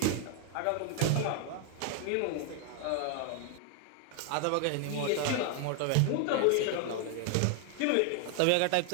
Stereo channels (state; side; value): different; both; correlation 0.00